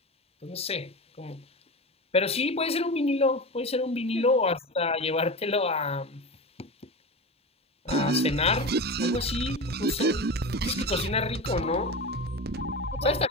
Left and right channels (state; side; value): normal; both; correlation 0.26